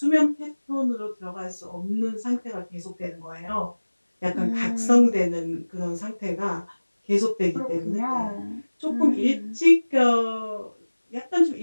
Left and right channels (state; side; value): inverted; both; correlation -1.00